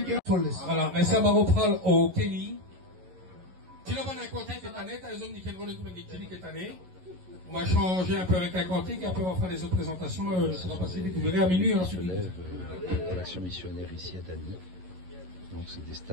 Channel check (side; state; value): left; late; 11 ms